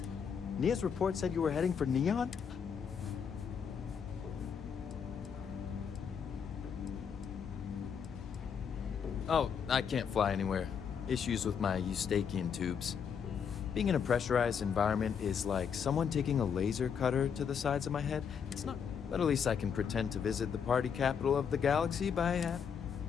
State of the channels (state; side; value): quieter; right; 7.1 dB